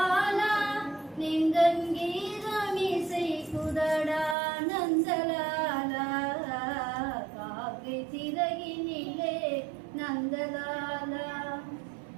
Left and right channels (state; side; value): drops out; left; at 4.4 s